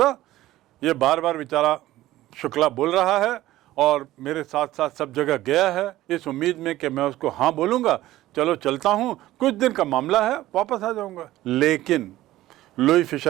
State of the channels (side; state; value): left; quieter; 15.6 dB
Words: ये बार बार बेचारा शुक्ला बोल रहा है और मेरे साथ साथ सब जगह गया है, इस उम्मीद में कि मैं उसको हाँ बोलूँगा, चलो चलता हूँ, कुछ दिन का मामला है, वापस आ जाऊँगा। लेकिन लुई